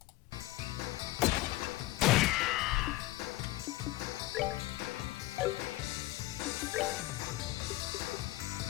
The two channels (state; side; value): quieter; right; 18.2 dB